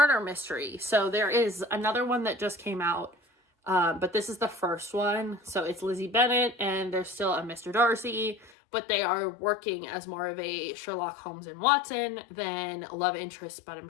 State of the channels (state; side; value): drops out; right; at 8.5 s